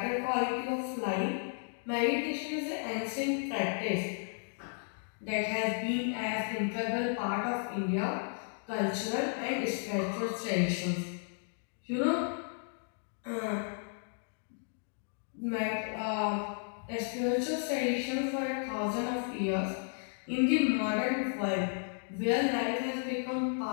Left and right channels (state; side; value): silent; right; 55 dB below the other